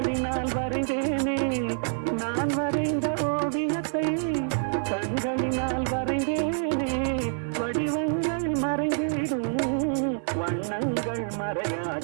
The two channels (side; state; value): left; silent; 58 dB below the other